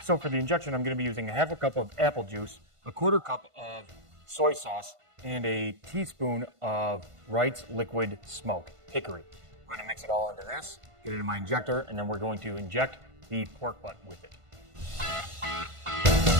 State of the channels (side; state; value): left; late; 1.5 ms